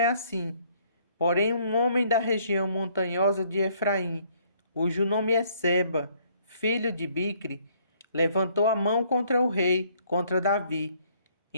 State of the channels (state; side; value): inverted; both; correlation -0.64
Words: assim, Porém, um homem da região montanhosa de Efraim, cujo nome é Seba, filho de Bicre, levantou a mão contra o rei, contra Davi.